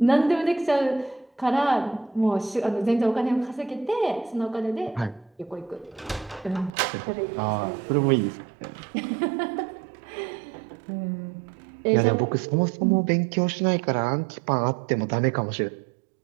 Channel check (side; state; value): left; drops out; at 6.7 s